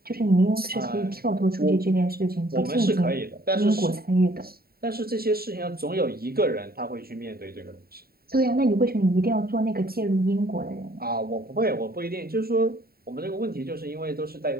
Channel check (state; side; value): late; left; 0.44 ms